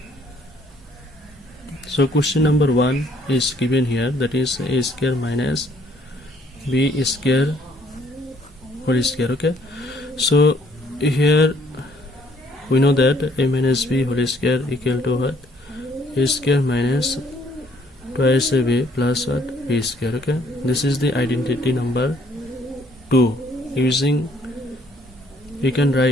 So question number 1 is given here, that is a square minus b square whole square. Okay, so here we know that a minus b whole square equal to what? A square minus twice a b plus what? B square. Okay, this is the identity number 2. Using, we can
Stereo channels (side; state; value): both; normal; correlation 0.64